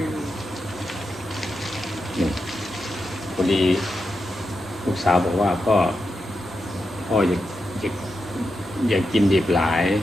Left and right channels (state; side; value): normal; both; correlation 0.87